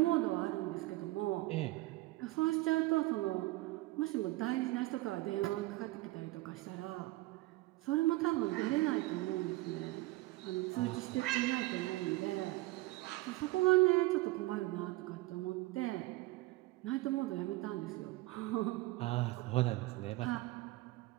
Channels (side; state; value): left; quieter; 19.7 dB